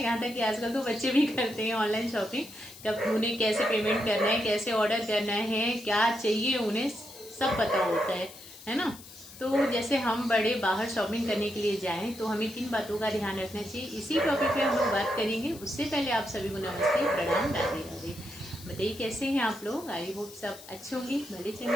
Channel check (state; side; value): noise; left; hiss, 18 dB below the sound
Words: यहाँ तक कि आजकल तो बच्चे भी करते हैं ऑनलाइन शॉपिंग। कब उन्हें कैसे पेमेंट करना है, कैसे ऑर्डर करना है, क्या चाहिए उन्हें सब पता होता है ना। तो जैसे हम बड़े बाहर शॉपिंग करने के लिए जाएं तो हमें किन बातों का ध्यान रखना चाहिए, इसी टॉपिक पे हम लोग बात करेंगे। उससे पहले आप सभी को नमस्ते, प्रणाम, राधे राधे। बताइए कैसे हैं आप लोग। आई होप सब अच्छे होंगे, भले